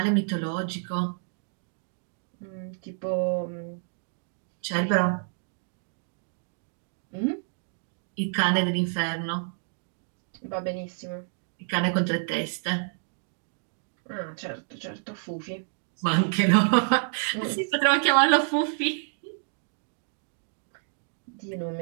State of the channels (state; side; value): silent; left; digital silence